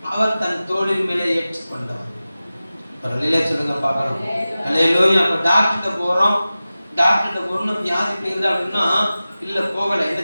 அவர் தன் தோளின் மேலே ஏற்றுக்கொண்டவர். ஒரு அல்லேலூயா சொல்லுங்க பார்க்கலாம். அல்லேலூயா. அப்ப டாக்டர்கிட்ட போறோம், டாக்டர்கிட்ட போறோம்னு வியாதி போயிருந்தா அப்படின்னா இல்ல போகல, என்ன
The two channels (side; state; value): both; inverted; correlation -0.95